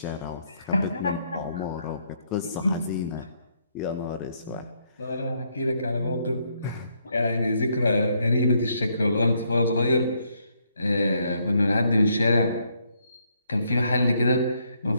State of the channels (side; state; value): both; inverted; correlation -0.73